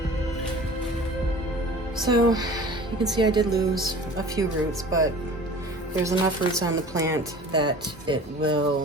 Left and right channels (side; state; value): both; normal; correlation 0.42